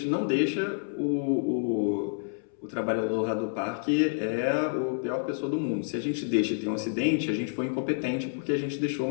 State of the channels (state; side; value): silent; right; 59 dB below the other